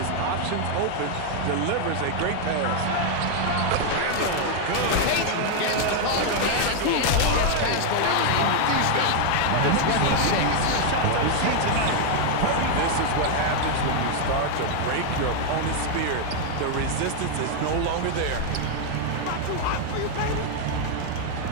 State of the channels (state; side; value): different; both; correlation 0.00